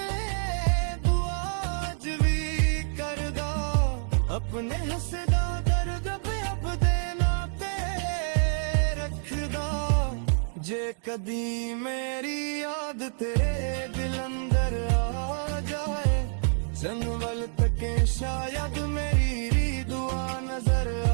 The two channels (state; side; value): silent; left; 60 dB below the other